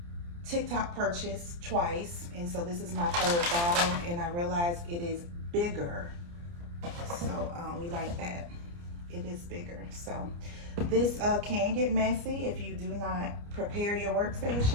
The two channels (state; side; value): late; left; 29 ms